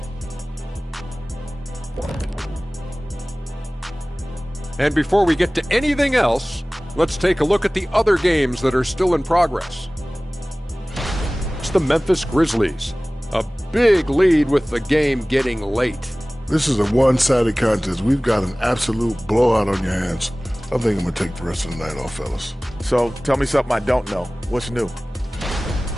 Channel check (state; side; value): normal; both; correlation 0.98